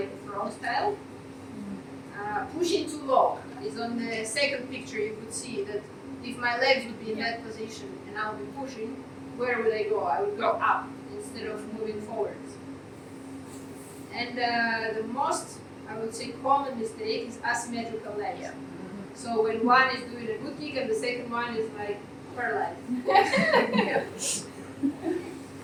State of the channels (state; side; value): identical; both; correlation 1.00